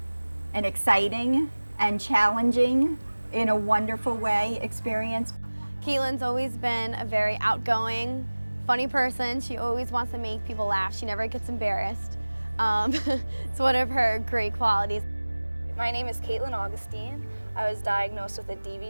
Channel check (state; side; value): inverted; both; correlation -1.00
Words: an exciting and challenging, in a wonderful way, experience. Caitlin's always been a very outgoing, funny person. She always wants to make people laugh. She never gets embarrassed. It's one of her great qualities. My name is Caitlin Augustine. I was diagnosed with a